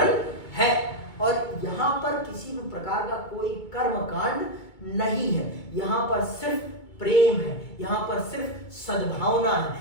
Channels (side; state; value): right; late; 2.3 ms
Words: है। और यहाँ पर किसी भी प्रकार का कोई कर्मकांड नहीं है, यहाँ पर सिर्फ प्रेम है, यहाँ पर सिर्फ सद्भावना है,